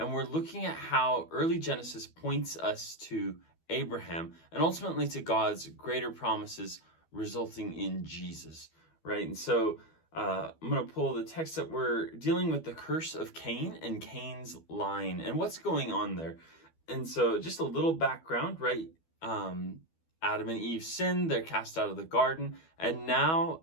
we're looking at how early Genesis points us to Abraham and ultimately to God's greater promises resulting in Jesus, right? And so I'm going to pull the text up. We're dealing with the curse of Cain and Cain's line and what's going on there. And so just a little background, right? Adam and Eve sinned, they're cast out of the garden, and now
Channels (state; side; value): late; right; 12 ms